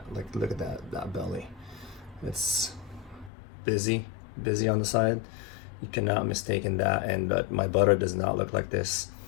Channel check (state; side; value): drops out; right; at 3.3 s